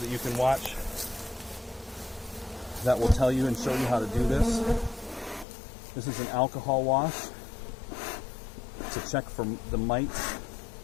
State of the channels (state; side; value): drops out; right; at 5.5 s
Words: you can watch that will tell you and show you how to do this. This is an alcohol wash to check for the mites